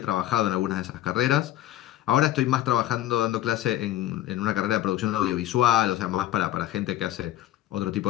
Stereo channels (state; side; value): quieter; right; 13.8 dB